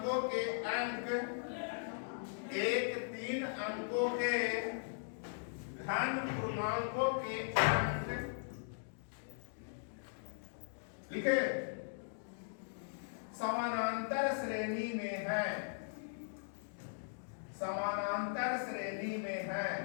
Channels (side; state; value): right; silent; digital silence